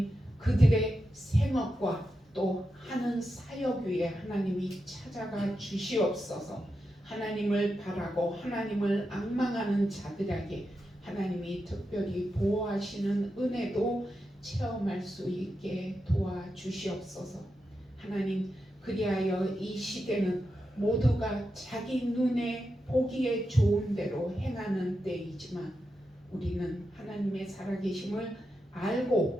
그들의 생업과 또 하는 사역 위에 하나님이 찾아가 주시옵소서. 하나님을 바라고 하나님을 앙망하는 자들에게 하나님이 특별히 보호하시는 은혜도 체험할 수 있게 도와주시옵소서. 하나님, 그리하여 이 시대는 모두가 자기 눈에 보기에 좋은 대로 행하는 때이지만 우리는 하나님의 살아계심을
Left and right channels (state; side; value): normal; both; correlation 0.88